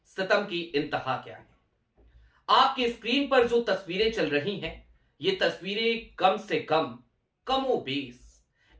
सितम की इंतहा क्या है। आपकी स्क्रीन पर जो तस्वीरें चल रही हैं, ये तस्वीरें कम से कम कमोबेश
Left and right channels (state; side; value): identical; both; correlation 1.00